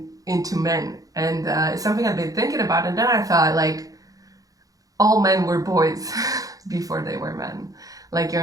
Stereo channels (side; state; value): left; late; 0.17 ms